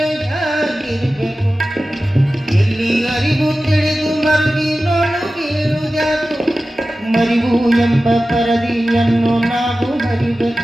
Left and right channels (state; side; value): normal; both; correlation 0.95